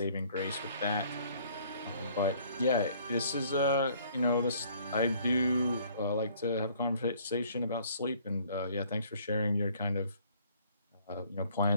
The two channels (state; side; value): inverted; both; correlation -0.59